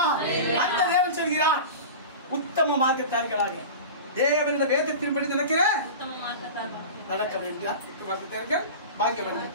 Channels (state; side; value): inverted; both; correlation -0.31